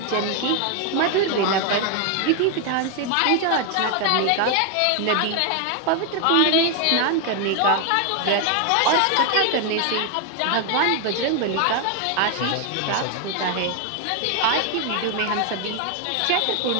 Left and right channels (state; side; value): different; both; correlation 0.01